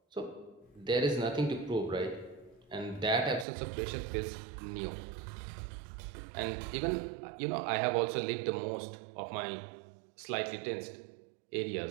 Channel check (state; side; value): drops out; left; at 3.5 s